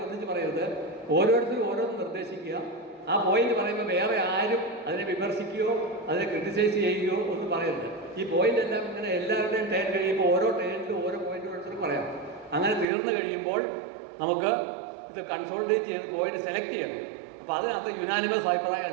ഒന്നിച്ച് പറയരുത്. ഓരോരുത്തരും ഓരോന്ന് നിർദ്ദേശിക്കുക. ആ പോയിന്റ് പറയുമ്പോൾ വേറെ ആരും അതിനെ വിമർശിക്കുകയോ അതിനെ ക്രിട്ടിസൈസ് ചെയ്യുകയോ ഒന്നും പറയരുത്. ഈ പോയിന്റ് എല്ലാം ഇങ്ങനെ എല്ലാവരുടെയും ടേൺ കഴിയുമ്പോൾ ഓരോ ടേണിലും ഓരോ പോയിന്റ് ഓരോരുത്തരും പറയാം. അങ്ങനെ തീർന്നു കഴിയുമ്പോൾ നമുക്ക് ഇത് കൺസോൾട്ടേറ്റ് ചെയ്ത് പോയിന്റ് സെലക്ട് ചെയ്യണം. അപ്പോൾ അതിനകത്ത് യുനാനിമസ് അഭിപ്രായം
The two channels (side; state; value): left; drops out; at 12.9 s